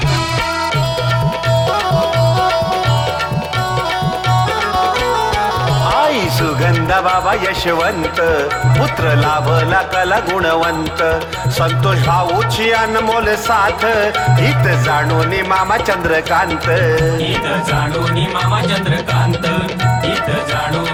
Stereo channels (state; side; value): identical; both; correlation 1.00